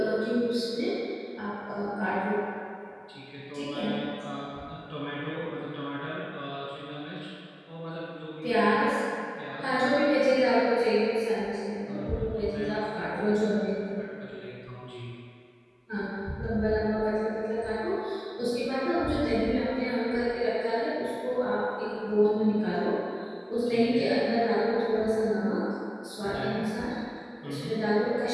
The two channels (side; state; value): both; identical; correlation 1.00